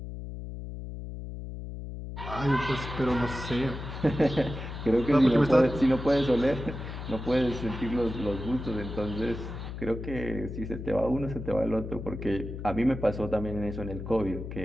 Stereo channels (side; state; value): left; noise; hum, 8 dB below the sound